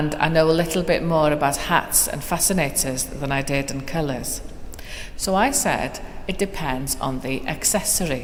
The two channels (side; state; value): both; identical; correlation 1.00